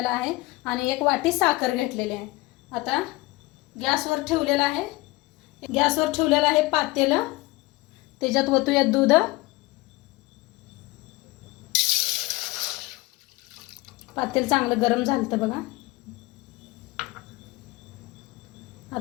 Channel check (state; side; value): quieter; right; 21.4 dB